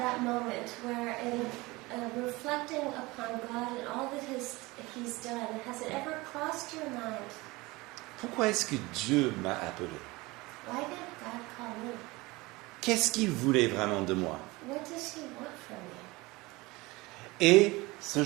moment where in reflecting upon God and all that He's done, has it ever crossed your mind? Pourquoi est-ce que Dieu m'a appelé? Why did God call me? Qu'est-ce qu'il voulait vraiment de moi? What does He want from me? Et ce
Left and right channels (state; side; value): quieter; left; 22.3 dB